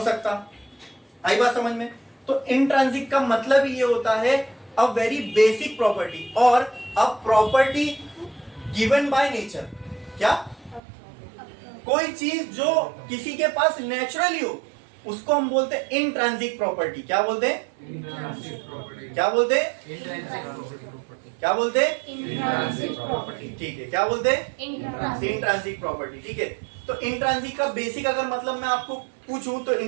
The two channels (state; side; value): drops out; left; at 10.8 s